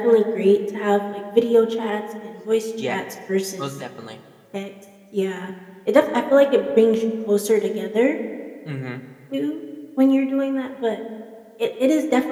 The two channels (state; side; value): identical; both; correlation 1.00